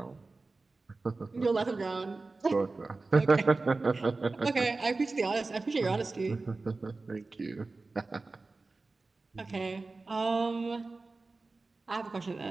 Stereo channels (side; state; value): left; quieter; 3.6 dB